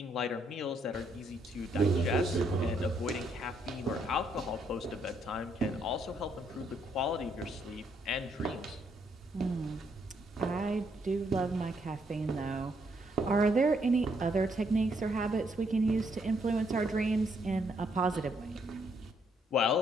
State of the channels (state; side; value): normal; both; correlation 0.72